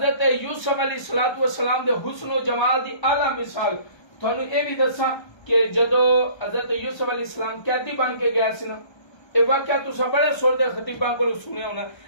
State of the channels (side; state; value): right; late; 1.3 ms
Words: یوسف علیہ السلام دے حسن و جمال دی اعلیٰ مثال تو انہوں اے بھی دسا کہ جدو حضرت یوسف علیہ السلام قیدی بن کے گیا سی نا، یہ واقعہ تو سب بڑے سور دے خطیباں کو سنے ہونا،